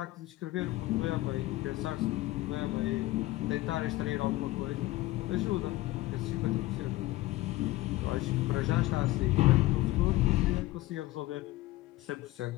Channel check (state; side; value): quieter; right; 17.8 dB